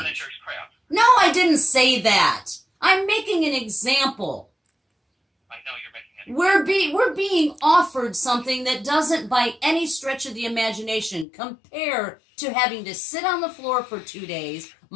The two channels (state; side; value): drops out; right; at 11.2 s